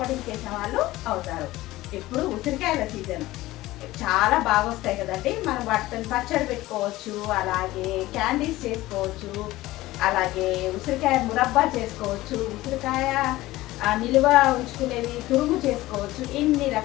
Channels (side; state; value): right; quieter; 17.5 dB